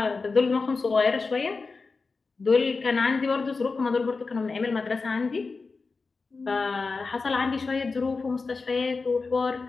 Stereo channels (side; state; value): right; quieter; 4.2 dB